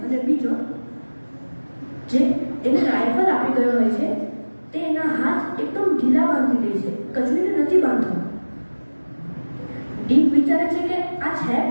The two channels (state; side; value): inverted; both; correlation -1.00